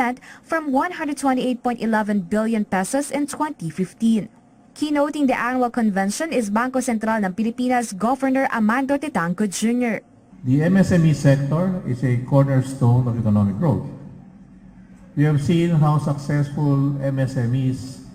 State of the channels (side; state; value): both; identical; correlation 1.00